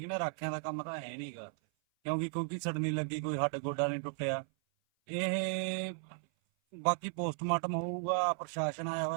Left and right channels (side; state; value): left; silent; 54 dB below the other